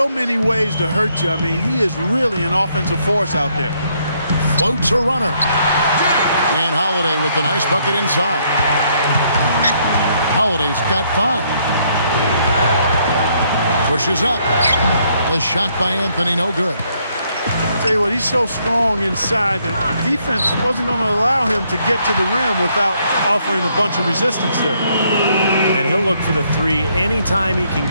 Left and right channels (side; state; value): both; inverted; correlation -0.71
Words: many ways to hurt you. I mean, he is really an offensive force out there. Floats a runner. And Holiday with the nice bucket inside. Holiday's got 5. Pushes up. The shot by Anthony, no good. I tell you what, he's so strong inside that the defense wasn't going to allow him to get to the rim without offering a bunch of resistance there. And he'll look for the three anytime he can